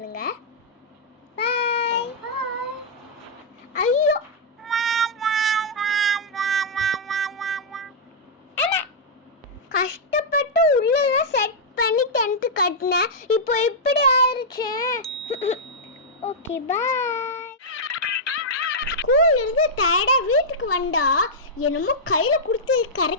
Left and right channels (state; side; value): normal; both; correlation -0.08